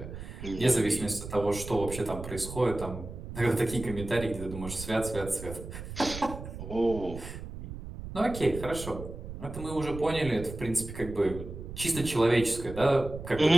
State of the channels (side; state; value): right; noise; rumble, 10 dB below the sound